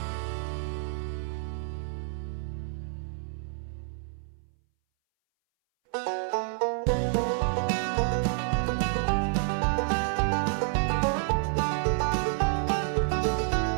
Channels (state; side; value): silent; left; 59 dB below the other